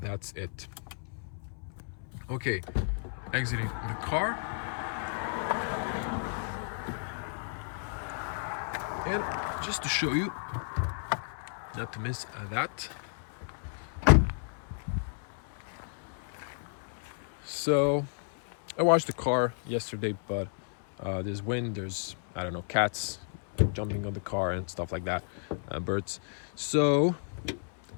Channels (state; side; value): silent; right; 56 dB below the other